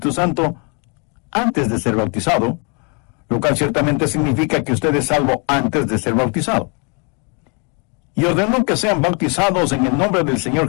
Santo antes de ser bautizado, lo cual ciertamente significa que usted es salvo antes de ser bautizado. Y ordenó que sean bautizados en el nombre del Señor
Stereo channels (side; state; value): right; quieter; 35.0 dB